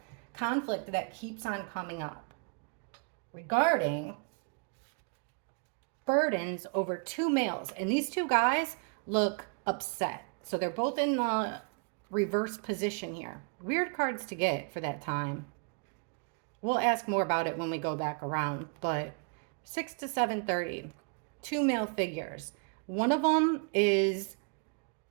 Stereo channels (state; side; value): quieter; left; 39.8 dB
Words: conflict that keeps on coming up regarding burdens over 2 males. And these 2 guys look upset. So they're both in the reverse position here. Weird cards to get for that time. We'll ask more about it when we go back around. But 6 to 7:30, 2 male figures. One of them is,